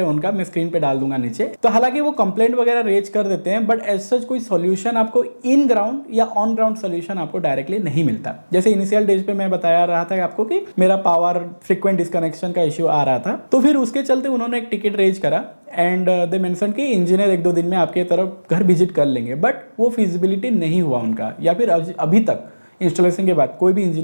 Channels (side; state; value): both; inverted; correlation -1.00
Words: उनका, मैं स्क्रीन पे डाल दूंगा नीचे। तो हालांकि वो कंप्लेंट वगैरह रेज कर देते हैं, बट एज सच कोई सॉल्यूशन आपको इन ग्राउंड या ऑन ग्राउंड सॉल्यूशन आपको डायरेक्टली नहीं मिलता। जैसे इनिशियल डेज पे मैं बताया रहा था आपको कि मेरा पावर फ्रीक्वेंट डिस्कनेक्शन का इश्यू आ रहा था, तो फिर उसके चलते उन्होंने एक टिकट रेज करा एंड दे मेंशन कि इंजीनियर 1-2 दिन में आपके तरफ घर विजिट कर लेंगे, बट वो फिजिबिलिटी नहीं हुआ उनका, या फिर अभी तक इंस्टॉलेशन के बाद कोई भी